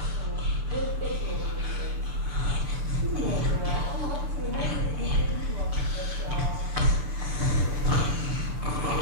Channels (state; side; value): late; left; 6.9 ms